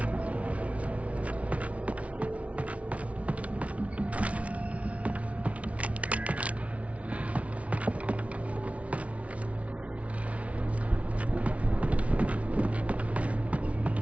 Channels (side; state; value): left; late; 0.065 ms